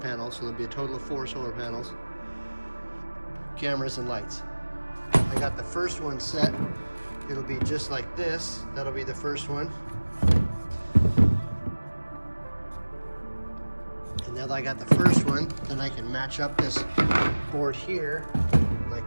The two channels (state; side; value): inverted; both; correlation -1.00